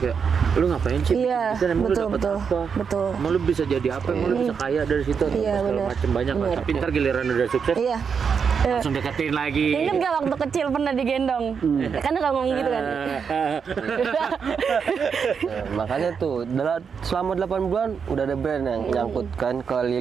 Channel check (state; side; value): quieter; left; 6.4 dB